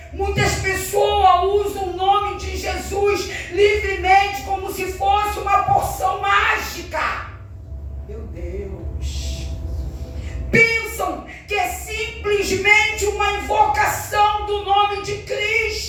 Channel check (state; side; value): identical; both; correlation 1.00